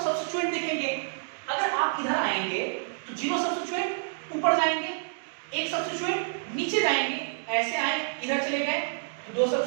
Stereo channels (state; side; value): silent; left; digital silence